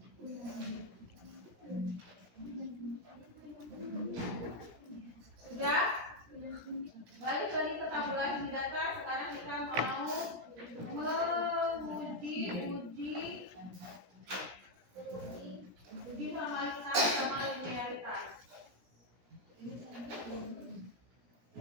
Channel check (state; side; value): late; left; 17 ms